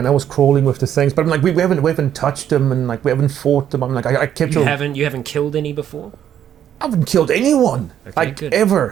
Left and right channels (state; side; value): quieter; left; 10.0 dB